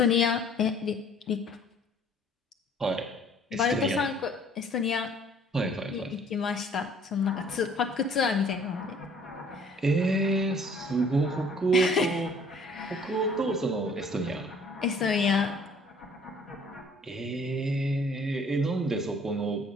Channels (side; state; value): both; normal; correlation 0.56